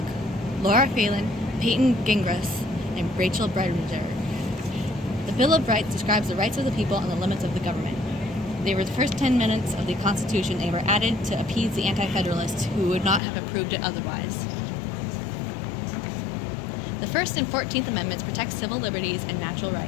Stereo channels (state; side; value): drops out; right; at 13.2 s